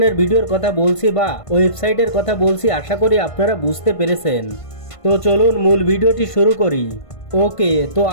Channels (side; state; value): right; late; 1.5 ms